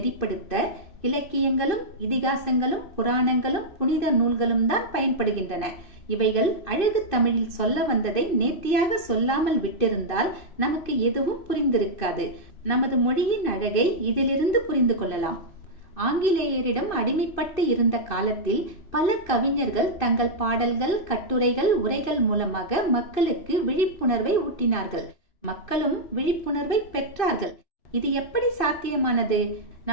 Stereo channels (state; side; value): late; right; 2.6 ms